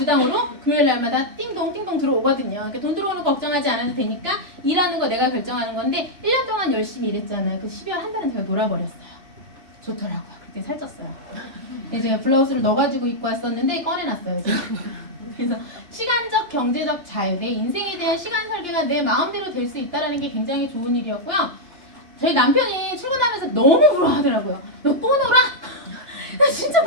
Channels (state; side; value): late; left; 2.8 ms